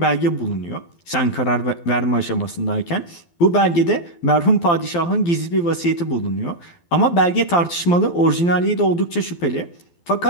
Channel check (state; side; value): late; right; 12 ms